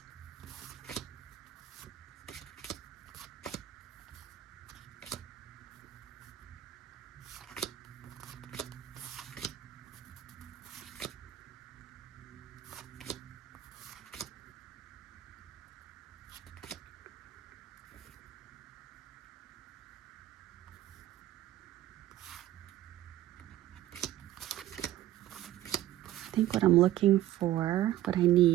I think what I'm looking for, what I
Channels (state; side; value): quieter; left; 13.8 dB